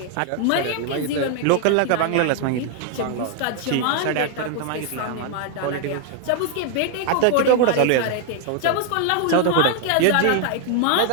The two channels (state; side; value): different; both; correlation 0.00